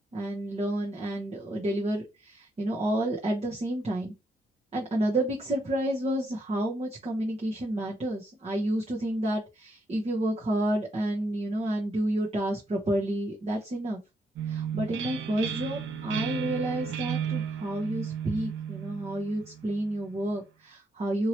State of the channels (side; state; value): both; normal; correlation 0.77